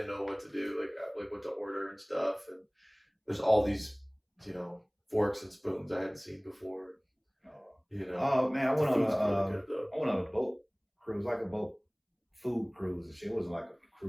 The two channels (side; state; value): both; identical; correlation 1.00